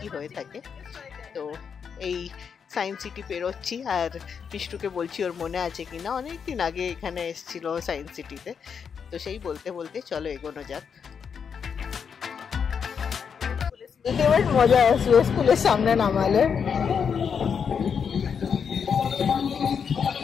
হয়ে থাকে। তো এই সায়েন্স সিটি পেরোচ্ছি, আর মিষ্টুকে বলছি ওর মনে আছে কিনা, অনেকদিন আগে এখানে এসেছিল সায়েন্স সিটিতে। তো সেই বলতে বলতে চলো এগোনো যাক। এবার মজা আসবে স্কুলের সামনে নামালে।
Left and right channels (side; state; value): right; quieter; 6.7 dB